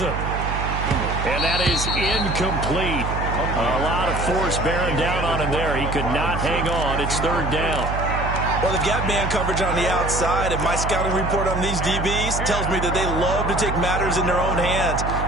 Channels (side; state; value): right; noise; hum, 3 dB below the sound